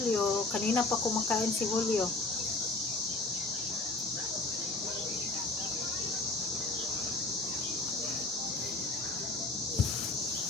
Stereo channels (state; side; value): quieter; right; 3.1 dB